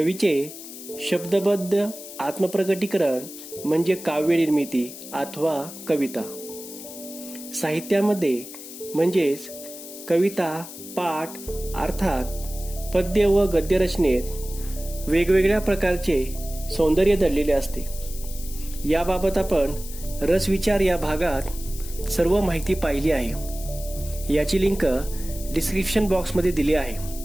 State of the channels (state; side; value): noise; left; hiss, 13 dB below the sound